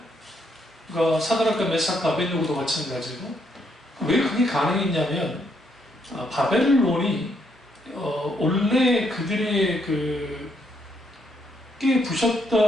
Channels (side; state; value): both; normal; correlation 0.74